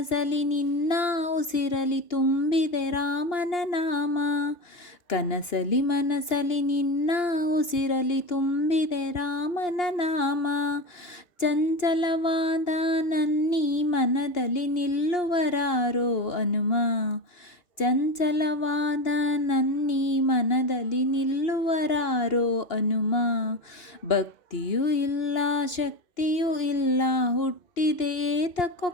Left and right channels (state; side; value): late; right; 2.8 ms